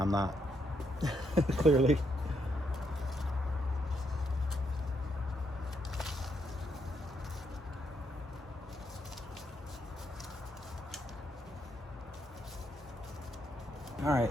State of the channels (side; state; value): both; normal; correlation 0.77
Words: not. Clearly. All